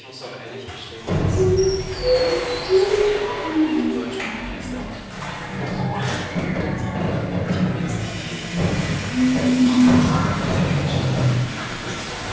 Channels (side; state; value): both; identical; correlation 1.00